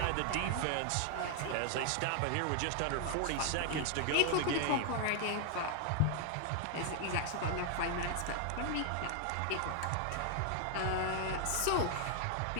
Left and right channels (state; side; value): different; both; correlation 0.00